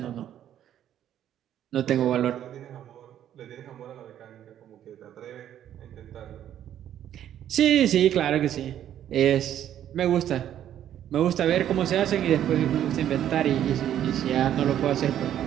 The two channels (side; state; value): left; quieter; 10.8 dB